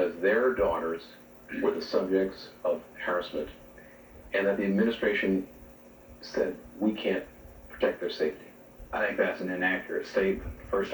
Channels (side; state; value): both; identical; correlation 1.00